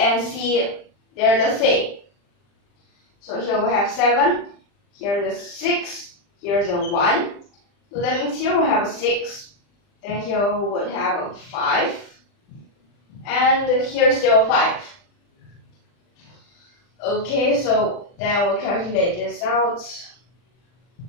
C, they're the same. So here we have 7, here's a 6, here's a 1. So that means here we have a 6, then here we would have a 5, and here's still 5. Okay, so then we'll calculate this out.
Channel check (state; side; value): late; right; 40 ms